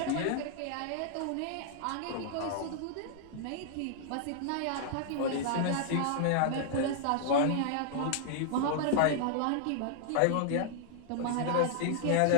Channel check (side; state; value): both; different; correlation -0.01